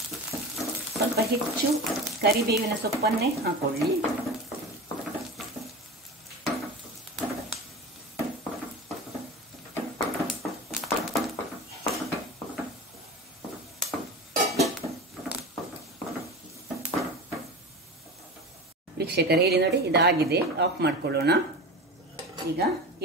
ಸ್ವಲ್ಪ ಹೆಚ್ಚು ಕರಿಬೇವಿನ ಸೊಪ್ಪನ್ನೇ ಹಾಕೊಳ್ಳಿ. ವೀಕ್ಷಕರೇ ಇಲ್ಲಿ ನೋಡಿ, ಇದಾಗಿದೆ. ಆಫ್ ಮಾಡ್ಕೊಳ್ಳೋಣ. ಈಗ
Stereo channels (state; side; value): normal; both; correlation 0.29